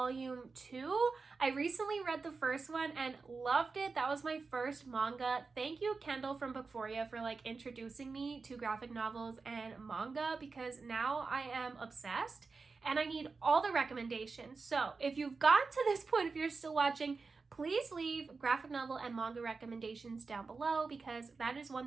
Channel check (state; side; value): quieter; left; 4.4 dB